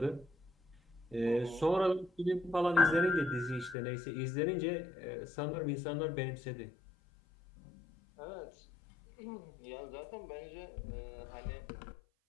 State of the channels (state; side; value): drops out; right; at 3.8 s